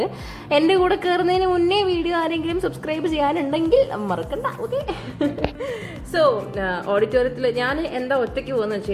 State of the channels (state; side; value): identical; both; correlation 1.00